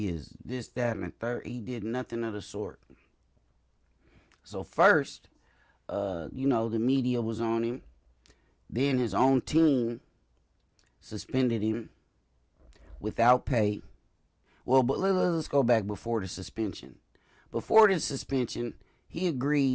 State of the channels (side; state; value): both; identical; correlation 1.00